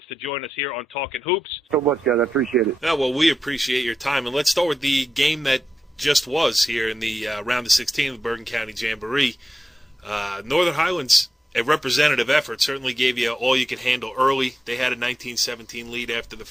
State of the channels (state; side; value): normal; both; correlation 0.89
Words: to join us here on Talkin Hoops. So much, guys. I appreciate it. Well, we appreciate your time. And let's start with the game that just was here in the round of 16 of the Bergen County Jamboree. Northern Highlands a representative effort. Certainly gave you all you could handle early. They had a 19-17 lead after the